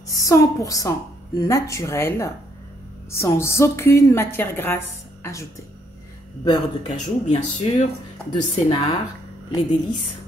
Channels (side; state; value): both; normal; correlation 0.71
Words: 100% naturel, sans aucune matière grasse ajoutée. Beurre de cajou, bien sûr, de Sénart, les délices